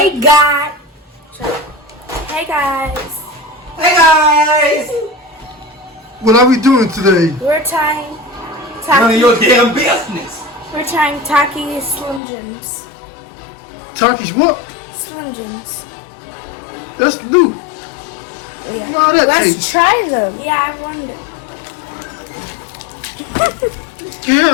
guys. Hey guys. Hey guys! What are we doing today? We're trying None of your damn business. We're trying Takis Slim Jims. Takis what? Slim Jims. That's new. Yeah. Wow, that Let's tastes. try them. Yeah, I wonder.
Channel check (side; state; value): right; drops out; at 12.2 s